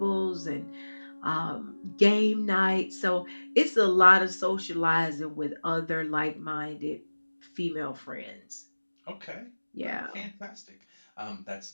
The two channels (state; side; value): inverted; both; correlation -1.00